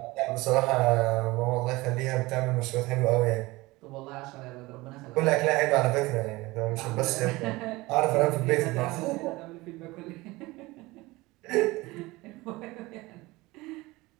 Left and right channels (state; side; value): quieter; left; 21.1 dB